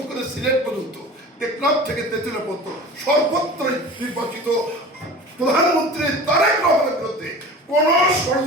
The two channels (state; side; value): normal; both; correlation 0.37